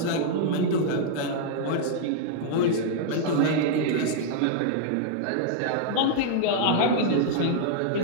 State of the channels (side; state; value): both; different; correlation -0.01